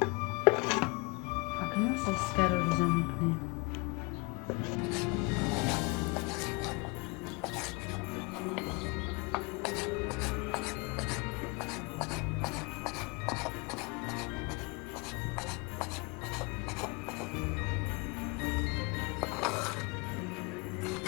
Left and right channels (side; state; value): right; quieter; 29.4 dB